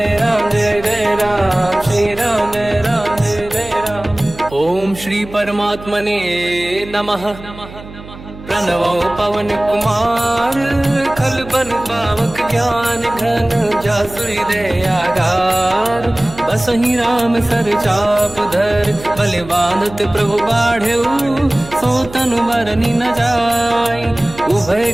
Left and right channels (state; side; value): noise; right; hum, 16 dB below the sound